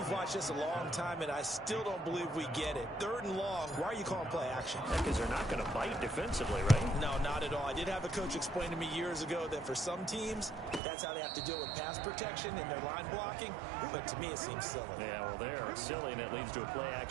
watched this a long time, and I still don't believe we get it. 3rd and long, why are you calling play action? Because they're not going to bite defensively, right? No, not at all. I did have a coach explain to me years ago that for some teams, that's how they have to deal with pass protection and their line blocking. But to me, it seems silly. Yeah, well, they're silly, and it leads to a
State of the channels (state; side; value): drops out; left; at 10.8 s